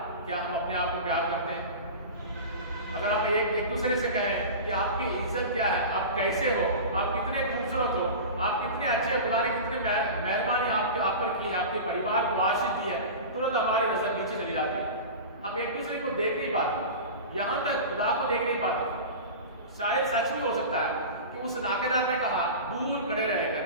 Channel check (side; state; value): both; inverted; correlation -0.30